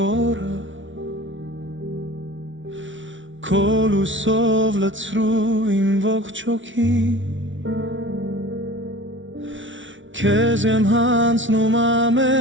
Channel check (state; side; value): late; left; 0.56 ms